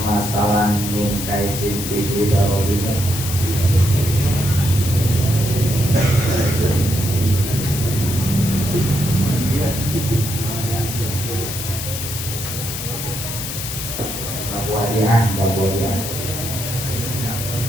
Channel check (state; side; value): noise; left; hiss, 6 dB below the sound